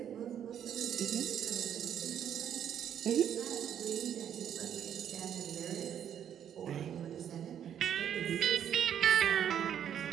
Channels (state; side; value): quieter; left; 9.4 dB